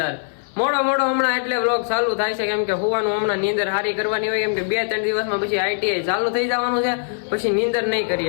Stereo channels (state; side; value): silent; right; 57 dB below the other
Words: મોડો હમણાં એટલે વ્લોગ ચાલુ થાય છે, કેમ કે હોવાનું હમણાં નીંદર હારી કરવાની હોય, કેમ કે 2-3 દિવસમાં પછી આઈટીઆઈ ચાલુ થઈ જવાનું છે, પછી નીંદર નહીં